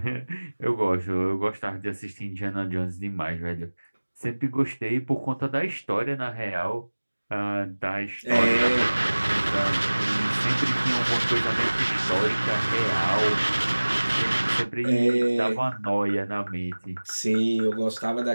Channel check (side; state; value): both; inverted; correlation -1.00